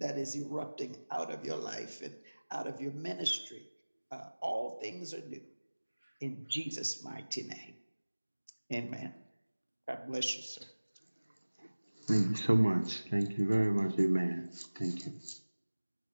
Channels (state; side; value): inverted; both; correlation -1.00